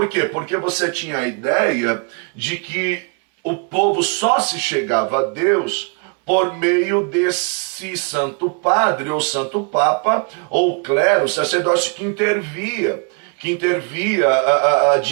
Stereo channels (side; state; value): left; quieter; 36.6 dB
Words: quê? Porque você tinha a ideia de que o povo só se chegava a Deus por meio desse santo padre, ou santo papa, ou clero, sacerdócio que intervia